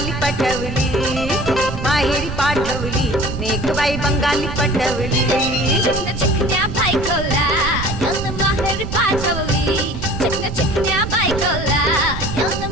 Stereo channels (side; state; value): right; noise; rumble, 6 dB below the sound